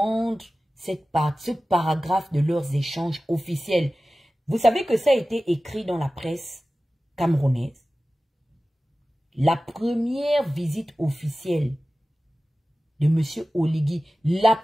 ce paragraphe de leurs échanges officiels. Vous savez que ça a été écrit dans la presse camerounaise. La première visite officielle de M. Oligui, la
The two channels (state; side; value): normal; both; correlation 0.96